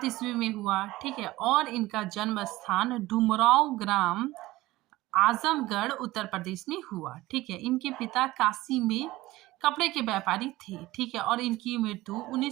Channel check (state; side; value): quieter; left; 18.1 dB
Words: ईस्वी में हुआ, ठीक है, और इनका जन्म स्थान डुमराव ग्राम आजमगढ़ उत्तर प्रदेश में हुआ, ठीक है। इनके पिता काशी में कपड़े के व्यापारी थे, ठीक है, और इनकी मृत्यु